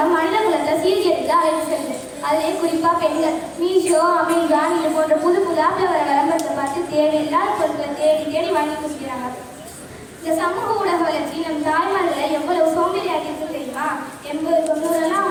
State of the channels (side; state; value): both; identical; correlation 1.00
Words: மனித குலத்தை சீர்கெடுத்து அழைத்து செல்லுது. அதிலே குறிப்பாக பெண்கள் மீஷோ, அமேசான் இது போன்ற புது ஆப்பில் வர விளம்பரத்தை பார்த்து தேவையில்லாத பொருட்களை தேடி வாங்கி குடிக்கிறாங்க. இந்த சமூக ஊடக வளர்ச்சி நம் தாய்மார்களை எவ்வளவு சோம்பேறியாகி இருக்கு தெரியுமா? 80-90